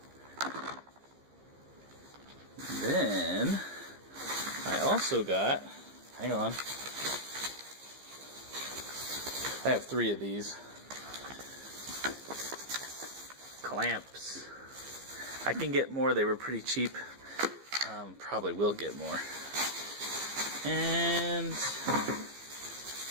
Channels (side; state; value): left; late; 15 ms